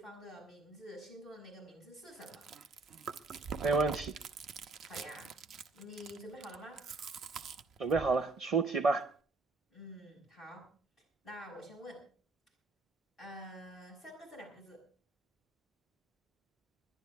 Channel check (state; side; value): quieter; left; 3.7 dB